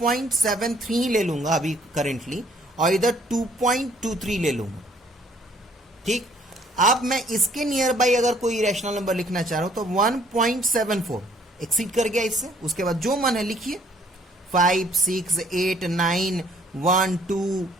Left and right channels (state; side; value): normal; both; correlation 0.62